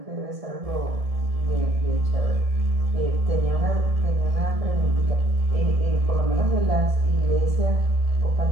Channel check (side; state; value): left; late; 1.7 ms